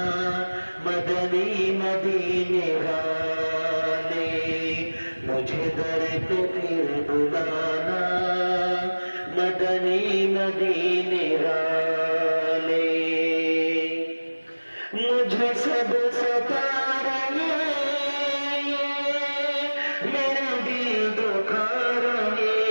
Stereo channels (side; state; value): both; inverted; correlation -1.00